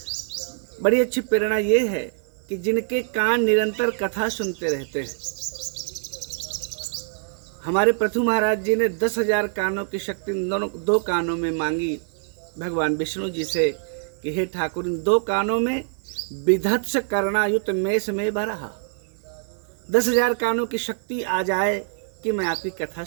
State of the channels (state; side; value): silent; left; digital silence